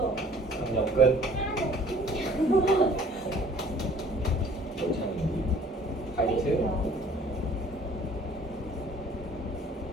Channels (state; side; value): normal; both; correlation 0.53